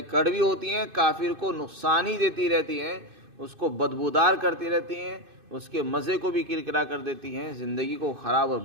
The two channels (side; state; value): left; late; 2.5 ms